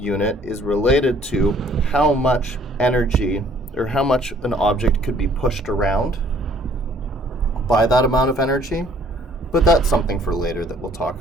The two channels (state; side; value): normal; both; correlation 0.59